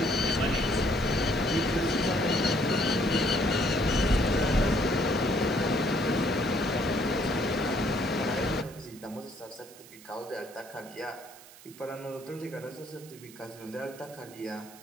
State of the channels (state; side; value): noise; right; hiss, 20 dB below the sound